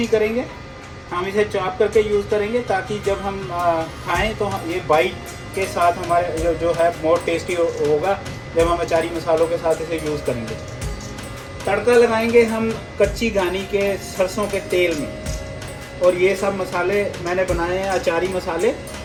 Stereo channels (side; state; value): both; identical; correlation 1.00